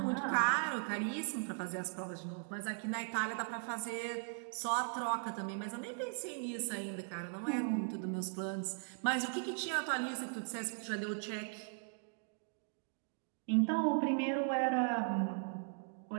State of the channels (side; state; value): left; silent; 52 dB below the other